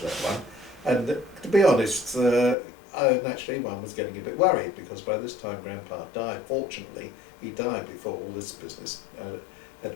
that one. And to be honest, naturally one was getting a bit worried because by this time Grandpa died. Fortunately, he died before all this business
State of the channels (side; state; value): right; drops out; at 2.6 s